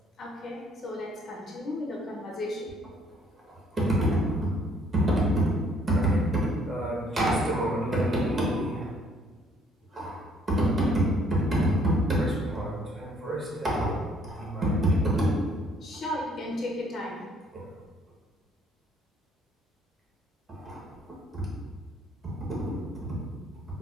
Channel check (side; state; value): both; normal; correlation 0.63